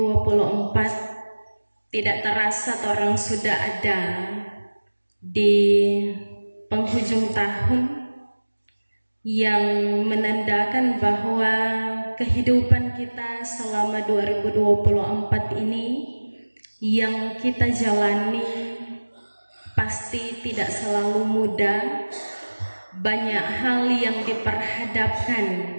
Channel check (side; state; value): both; inverted; correlation -1.00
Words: Tidak terasa orang sudah ada di penghujung tahun, yang menandakan bahwa kehidupan kita selama 2024 ini yang kita jalani pasti tidak selalu mudah. Banyak hal yang diperhadapkan